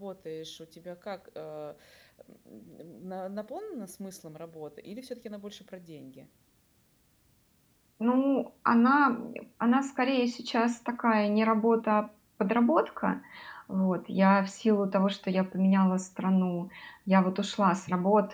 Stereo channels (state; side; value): identical; both; correlation 1.00